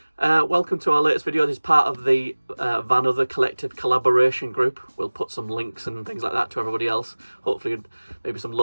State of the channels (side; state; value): both; inverted; correlation -1.00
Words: Welcome to our latest video. This is part of the Vanother collective collaboration group. We'll put some links and things like that to everybody else. Hopefully maybe some